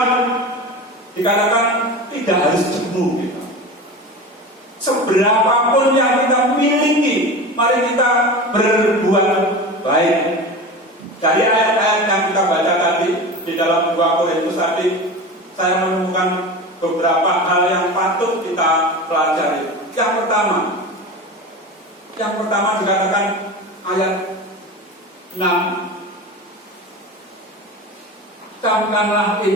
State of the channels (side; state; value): both; normal; correlation 0.30